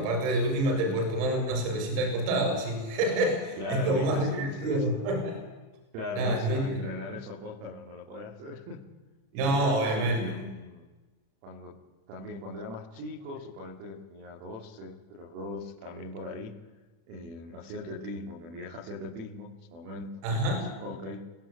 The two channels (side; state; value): left; late; 37 ms